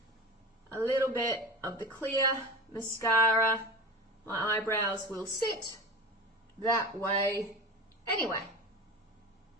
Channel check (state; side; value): normal; both; correlation 0.31